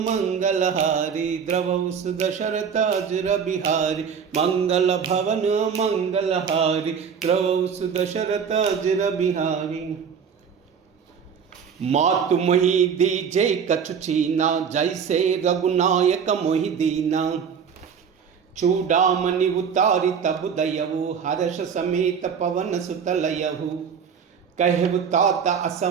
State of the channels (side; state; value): left; quieter; 6.9 dB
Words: हारी, द्रवहु दशरथ अजर बिहारी, मंगल भवन मंगल हारी, द्रवहु दशरथ अजर बिहारी। मातु मोहि दीजे कछु चीना, जैसे रघुनायक मोहि दीना, चूड़ामणि उतारी तब दयहु, हर्ष समेत पवन सुत लयहु, कहु तात